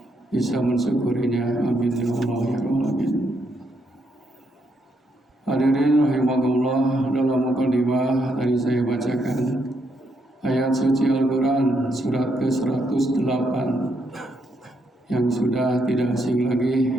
bisa mensyukurinya. Amin ya Allah ya Rabbal. Hadirin rahimakumullah, dalam mukadimah tadi saya bacakan ayat suci Al-Quran surat ke-108 yang sudah tidak asing lagi,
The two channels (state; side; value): normal; both; correlation 0.77